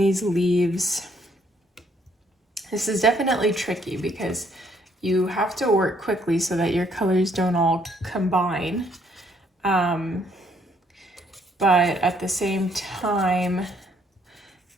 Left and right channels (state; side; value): normal; both; correlation 0.67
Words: leaves. This is definitely tricky because you have to work quickly so that your colors don't all combine. But at the same time,